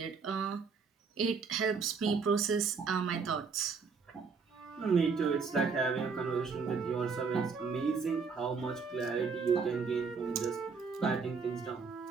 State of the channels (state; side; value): quieter; left; 5.2 dB